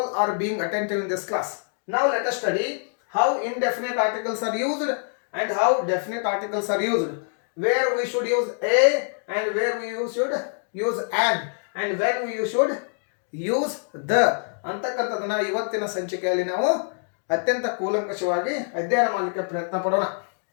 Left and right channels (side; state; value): right; silent; 62 dB below the other